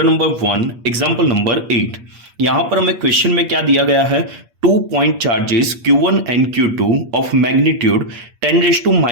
number 1 example number 8। यहां पर हमें क्वेश्चन में क्या दिया गया है, 2 point charges Q1 and Q2 of magnitude 10 raised to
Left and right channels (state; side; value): late; left; 8.4 ms